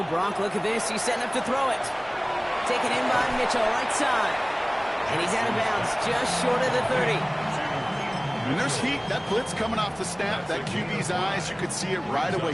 Gronk, look at this. He's setting up to throw it. Taken in by Mitchell, right side. And he's out of bounds, just short of the 30. When there's heat, that blitz coming off the snap, that QB's eyes, you could see it right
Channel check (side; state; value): both; identical; correlation 1.00